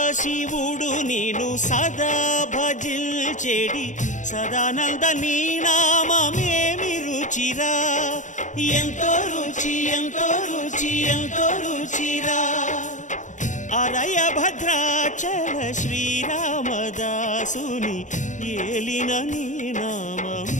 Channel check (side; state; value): right; late; 0.36 ms